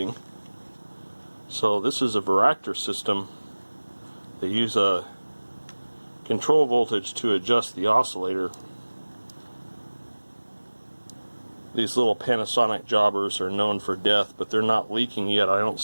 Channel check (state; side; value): inverted; both; correlation -1.00